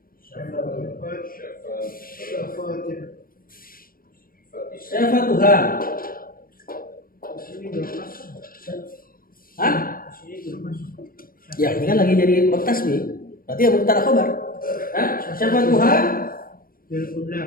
syafatuha. Hah? Ya, ini kan lagi jadi bab tasbih. Berarti ya mubtada khabar. Hah? Syafatuha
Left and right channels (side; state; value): right; late; 0.42 ms